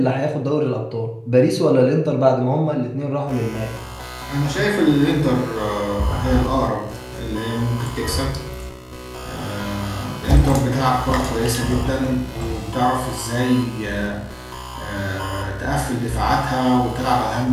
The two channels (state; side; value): identical; both; correlation 1.00